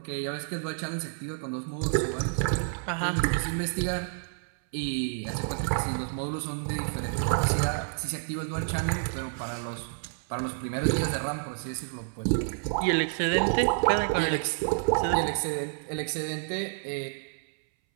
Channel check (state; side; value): silent; left; 58 dB below the other